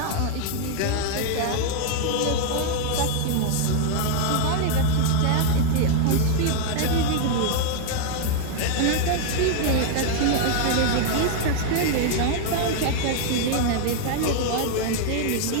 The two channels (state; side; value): different; both; correlation 0.00